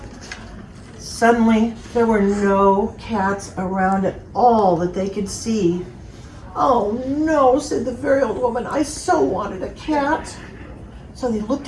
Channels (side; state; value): both; identical; correlation 1.00